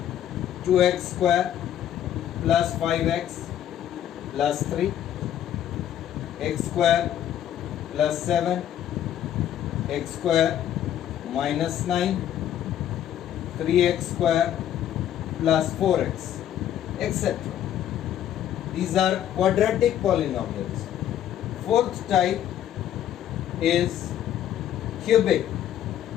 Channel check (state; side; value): quieter; right; 10.9 dB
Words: 2x square plus 5x plus 3, x square plus 7, x square minus 9, 3x square plus 4x, etc. These are quadratic polynomials. Fourth type is cubic.